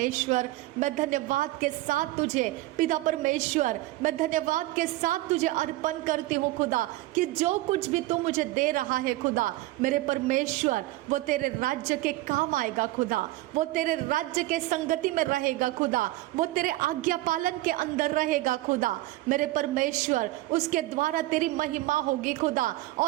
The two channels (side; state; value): left; quieter; 18.2 dB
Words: मैं धन्यवाद के साथ तुझे, पिता परमेश्वर, मैं धन्यवाद के साथ तुझे अर्पण करती हूँ खुदा, कि जो कुछ भी तू मुझे दे रहा है खुदा मेरे परमेश्वर, वो तेरे राज्य के काम आएगा खुदा, वो तेरे राज्य के संगति में रहेगा खुदा, वो तेरे आज्ञा पालन के अंदर रहेगा खुदा मेरे परमेश्वर, उसके द्वारा तेरी महिमा होगी खुदा,